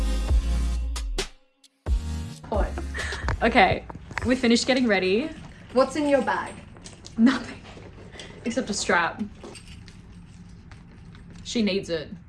Okay, we finished getting ready. What's in your bag? Nothing. Except a strap. She needs it.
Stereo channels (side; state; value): both; identical; correlation 1.00